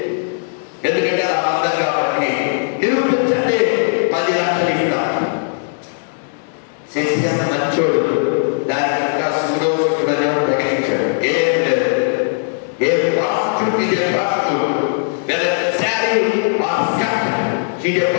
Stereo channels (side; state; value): right; silent; digital silence